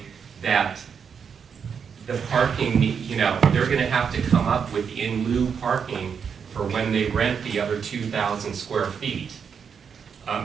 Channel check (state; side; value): quieter; left; 6.7 dB